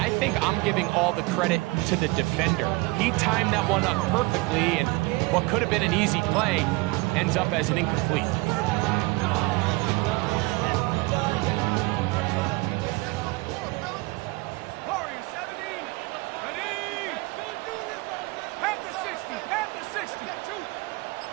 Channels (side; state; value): left; quieter; 24.5 dB